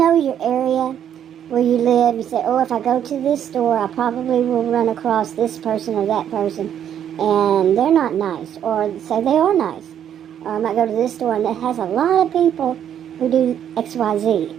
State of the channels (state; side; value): quieter; left; 9.6 dB